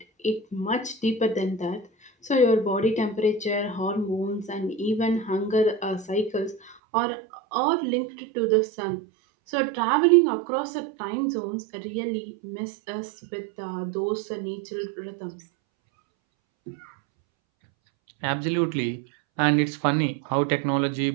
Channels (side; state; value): left; drops out; at 6.8 s